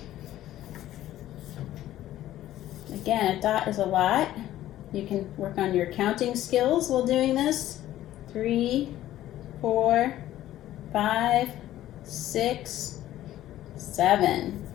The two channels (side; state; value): right; quieter; 13.6 dB